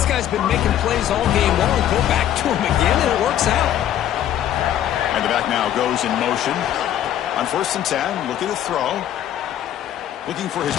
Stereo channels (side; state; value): right; quieter; 11.3 dB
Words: guy's been making plays all game long. Go back to him again, and it works out. And the back now goes in motion. On first and 10, looking to throw. Looking for his